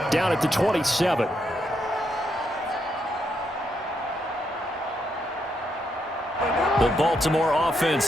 down at the 27. The Baltimore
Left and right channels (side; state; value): both; normal; correlation 0.79